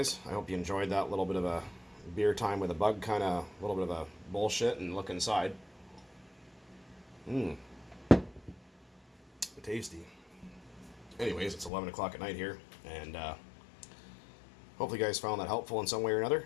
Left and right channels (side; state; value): right; drops out; at 11.7 s